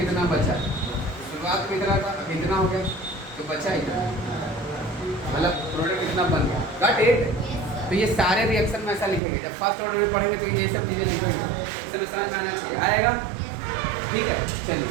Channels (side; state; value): left; drops out; at 9.2 s